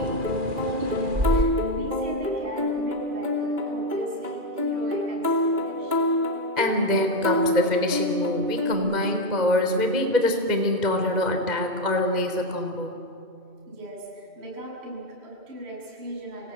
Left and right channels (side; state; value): left; late; 2.0 ms